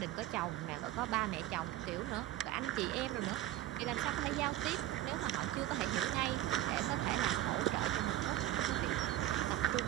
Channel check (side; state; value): left; quieter; 14.2 dB